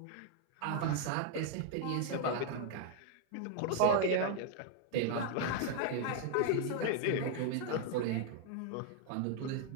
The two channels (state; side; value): different; both; correlation 0.00